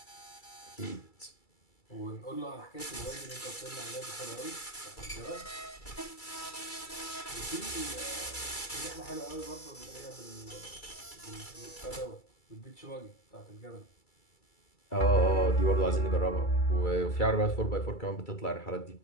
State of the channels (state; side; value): late; right; 2.3 ms